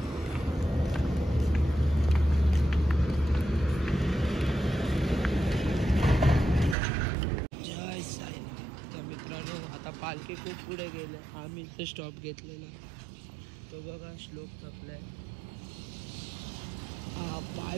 जय साईनाथ. तर मित्रांनो, आता पालखी खूप पुढे गेले. आम्ही इथे स्टॉप घेतलेला. तो बघा श्लोक थकलाय. पाय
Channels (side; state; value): left; drops out; at 6.8 s